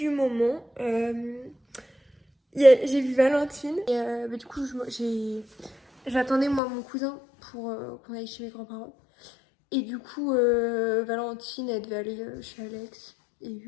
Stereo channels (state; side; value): drops out; right; at 6.6 s